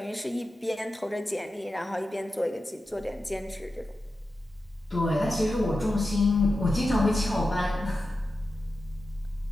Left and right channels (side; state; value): both; normal; correlation 0.92